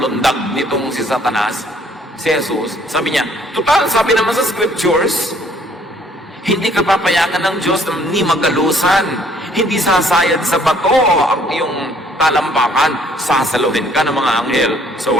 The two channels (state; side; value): normal; both; correlation 0.62